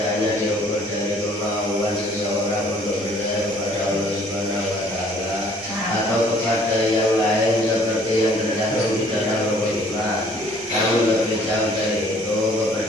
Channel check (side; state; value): both; normal; correlation 0.58